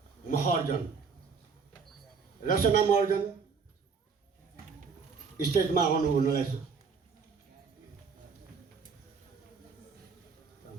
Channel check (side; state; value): left; quieter; 5.4 dB